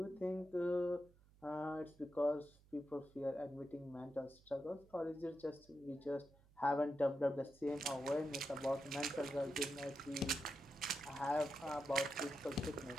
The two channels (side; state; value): right; noise; hum, 27 dB below the sound